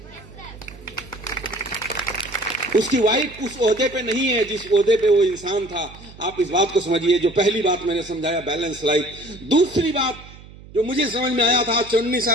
उसकी वाइफ उस ओहदे पे नहीं है जिस ओहदे पे वो इंसान था। आप इस बात को समझिए। जो पहली बात मैंने समझाया, बैलेंस लाइफ। दूसरी बात जो मुझे समझ में आया था आज 19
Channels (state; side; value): noise; right; hum, 19 dB below the sound